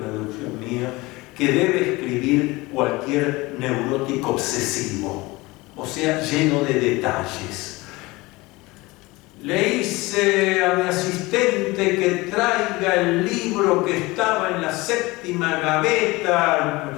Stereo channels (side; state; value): right; quieter; 22.0 dB